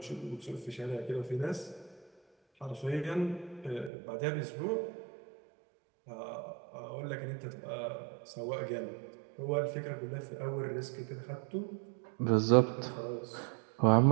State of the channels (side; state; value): left; drops out; at 3.9 s